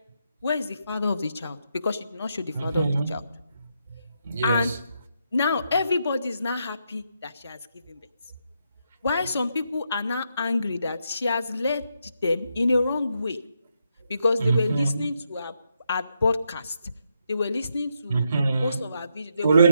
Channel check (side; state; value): both; inverted; correlation -0.80